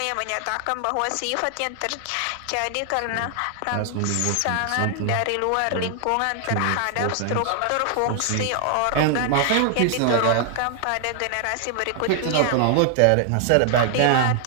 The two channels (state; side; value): different; both; correlation 0.00